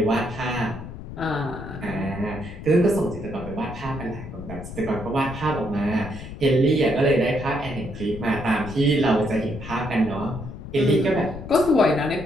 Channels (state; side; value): noise; left; rumble, 11 dB below the sound